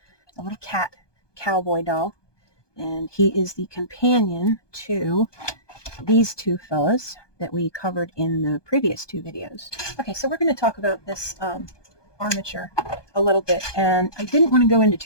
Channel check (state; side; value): late; right; 1.2 ms